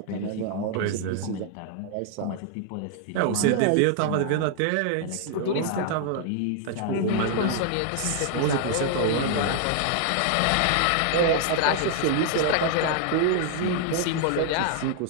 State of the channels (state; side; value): different; both; correlation 0.00